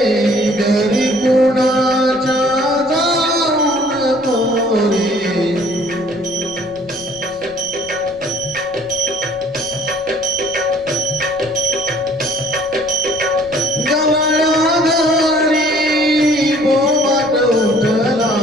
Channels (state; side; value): noise; left; rumble, 24 dB below the sound